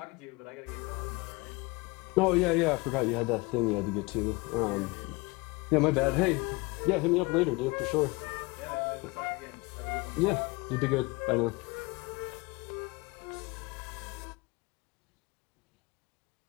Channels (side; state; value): right; quieter; 25.4 dB